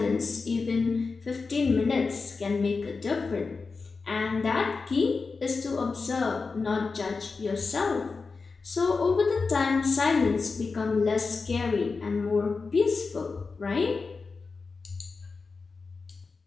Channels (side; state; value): right; quieter; 4.4 dB